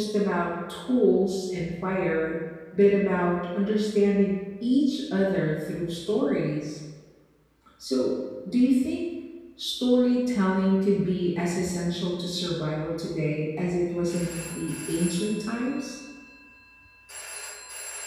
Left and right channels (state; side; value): identical; both; correlation 1.00